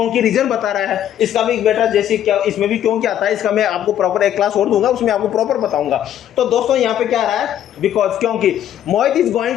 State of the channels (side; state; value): right; quieter; 10.8 dB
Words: रीजन बता रहा है। इसका भी बेटा जैसे क्या, इसमें भी क्यों क्या आता है, इसका मैं आपको प्रॉपर एक क्लास और दूंगा, उसमें आपको प्रॉपर बताऊंगा। तो दोस्तों यहाँ पे क्या आ रहा है? बिकॉज, क्योंकि। Mohit is